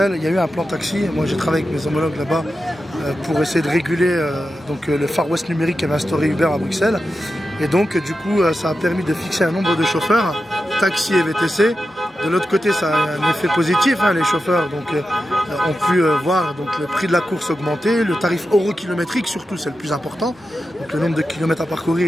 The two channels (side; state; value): both; normal; correlation 0.91